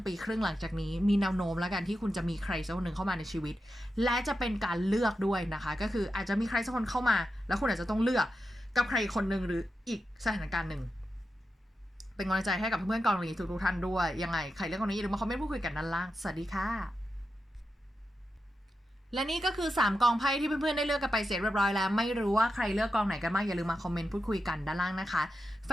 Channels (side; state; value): both; normal; correlation 0.89